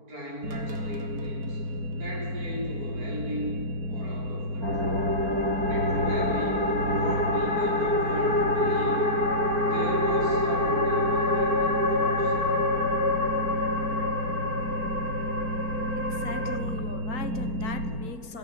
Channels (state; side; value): late; left; 4.4 ms